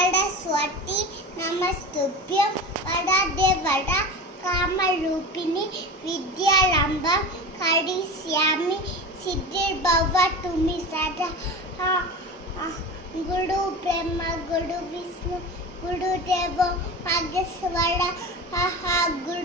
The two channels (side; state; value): both; normal; correlation 0.30